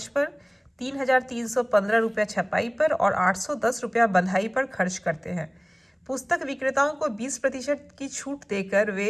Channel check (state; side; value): identical; both; correlation 1.00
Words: पर, 3315 रुपया छपाई पर और 810 रुपया बंधाई पर खर्च करते हैं। पुस्तक विक्रेताओं को 20% की छूट देकर